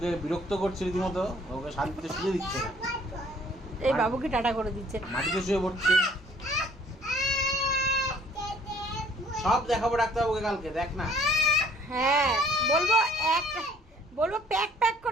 বিরক্ত করছে রীতিমতো, ওকে শান্তিতে শুয়ে দিচ্ছে না, এই বাবুকে টাটা করে দিচ্ছে, মাটিতে শুয়ে পড়ছে। সব দেখাবো ডাক্তারবাবুকে কালকে, দেখ না। হ্যাঁ বলবো প্যাক প্যাক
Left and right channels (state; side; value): normal; both; correlation 0.58